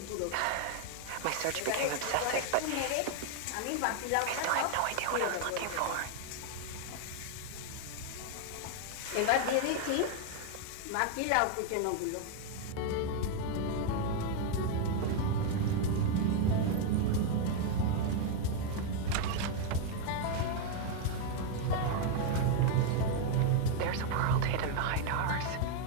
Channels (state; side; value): different; both; correlation 0.00